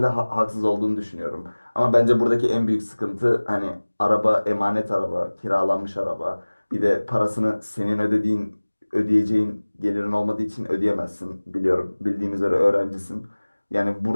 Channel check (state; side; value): inverted; both; correlation -1.00